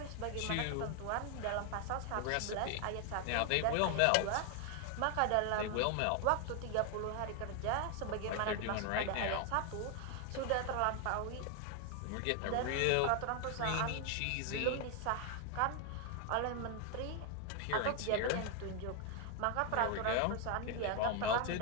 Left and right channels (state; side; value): different; both; correlation 0.00